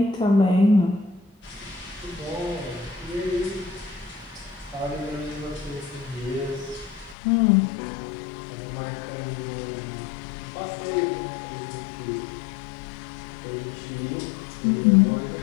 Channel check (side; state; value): right; drops out; at 7.2 s